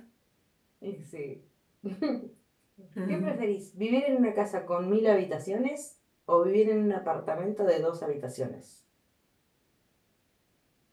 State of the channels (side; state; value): both; identical; correlation 1.00